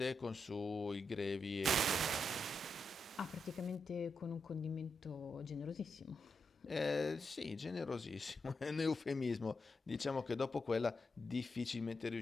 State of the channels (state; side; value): normal; both; correlation 0.85